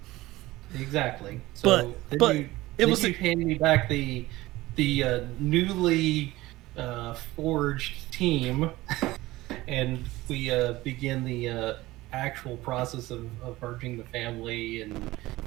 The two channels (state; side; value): quieter; left; 18.4 dB